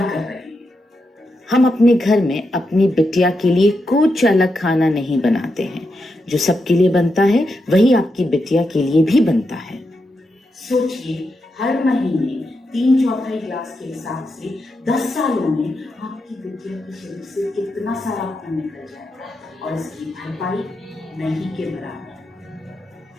रहे हैं। हम अपने घर में अपनी बिटिया के लिए कुछ अलग खाना नहीं बनाते हैं। जो सबके लिए बनता है वही आपकी बिटिया के लिए भी बनता है। सोचिए हर महीने 3/4 ग्लास के हिसाब से 10 सालों में आपकी बिटिया के शरीर से कितना सारा खून निकल जाएगा और इसकी भरपाई नहीं के बराबर।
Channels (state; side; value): normal; both; correlation 0.85